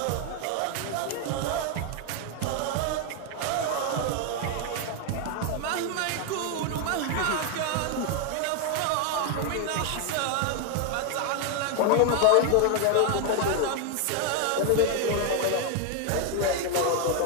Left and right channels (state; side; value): different; both; correlation 0.01